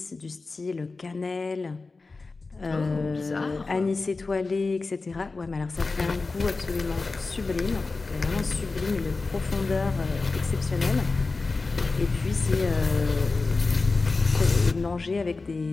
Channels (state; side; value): quieter; right; 3.8 dB